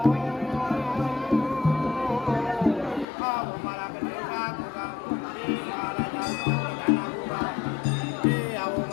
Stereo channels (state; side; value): drops out; right; at 3.1 s